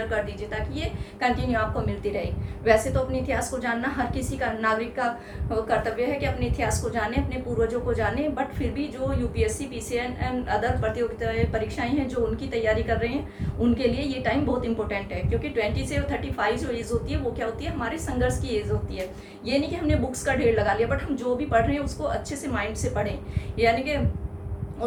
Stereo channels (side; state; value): both; identical; correlation 1.00